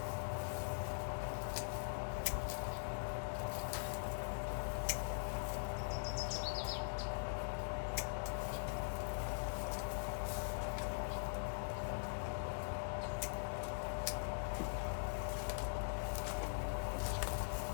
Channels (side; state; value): right; silent; digital silence